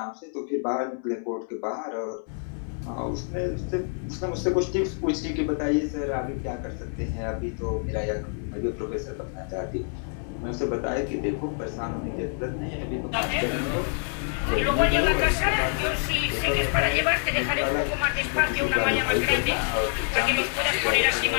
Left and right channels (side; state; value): right; silent; 55 dB below the other